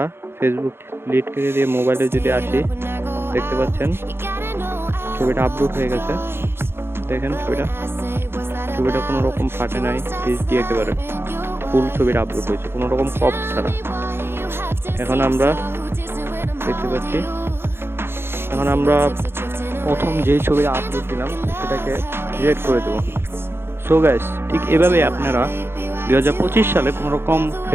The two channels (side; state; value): left; late; 0.11 ms